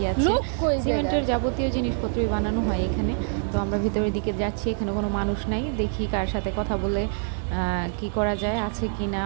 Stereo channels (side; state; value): left; silent; 61 dB below the other